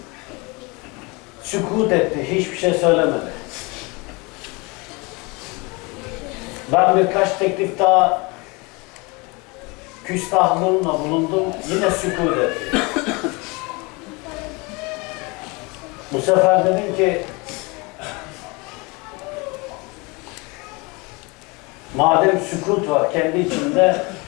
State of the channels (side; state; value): right; quieter; 27.2 dB